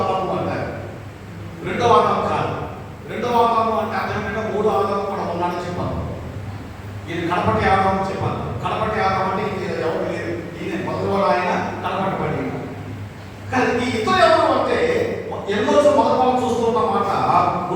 అంటారు. రెండో ఆదాము కాదు. రెండో ఆదాము అంటే అదేంటంటే మూడో ఆదాము కూడా ఉన్నాడని చెప్పాను. ఇది కడపటి ఆదాము చెప్పాను. కడపటి ఆదాము అంటే ఇది ఎవరు లేదు, ఈయన మొదలు ఆయన కడపటి పడి. కానీ ఈ ఇతరు ఎవరు అంటే ఎన్నో మొదలు చూస్తున్న మాట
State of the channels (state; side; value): identical; both; correlation 1.00